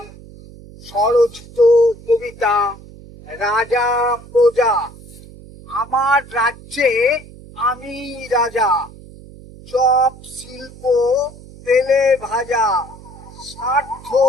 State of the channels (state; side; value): noise; right; hum, 19 dB below the sound